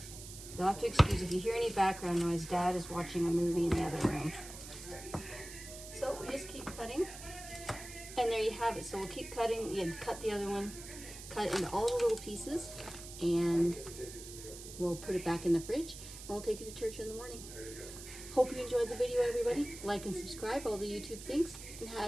You'll have to excuse if you hear any background noise. Dad is watching a movie in the other room. So we just keep cutting. And there you have it. So we'll keep cutting. You cut the other one. Cut it into all the little pieces. And we'll put it back in the fridge. And we'll take it to church in the morning. Hope you enjoyed the video, everybody. Like and subscribe, all the YouTube things.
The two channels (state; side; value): noise; right; hiss, 13 dB below the sound